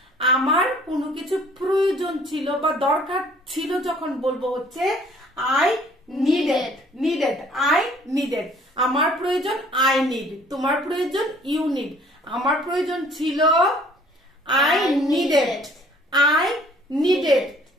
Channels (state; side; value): normal; both; correlation 0.57